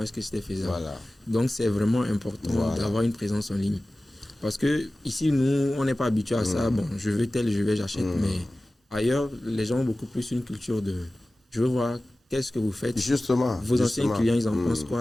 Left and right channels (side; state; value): both; normal; correlation 0.97